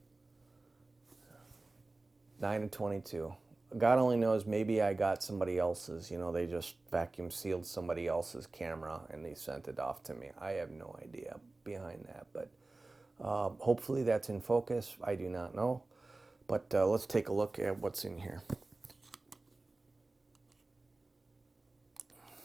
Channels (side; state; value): left; quieter; 3.2 dB